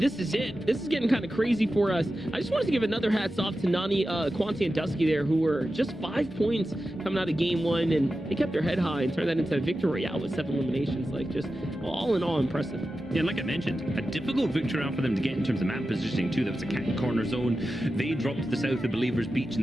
is it. This is getting kind of crazy for us. I just wanted to give another hats off to Nani, Quanti, and Dusky there, who were just 5 points coming out of game 1, and they kept their head high and turned that into a victory royale with 7 eliminations. Like, just all in all impressive. Yeah, like I mentioned, a difficult victory round for them to get in terms of map positioning too. That was a cat and corner zone. They dropped to the south of Believers Beach in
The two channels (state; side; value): normal; both; correlation 0.92